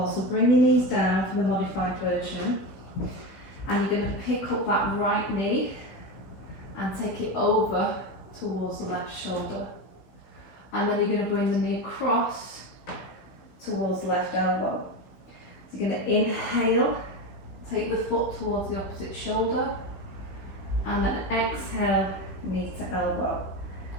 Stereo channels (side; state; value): right; late; 16 ms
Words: So bring your knees down for the modified version. And you're going to pick up that right knee and take it over towards the left shoulder. And then you're going to bring the knee across towards left elbow. So you're going to inhale, take the foot towards the opposite shoulder, and then exhale, knee to elbow.